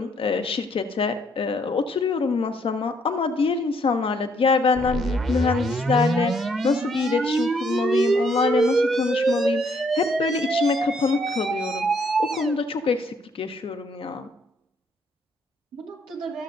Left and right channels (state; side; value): normal; both; correlation 0.69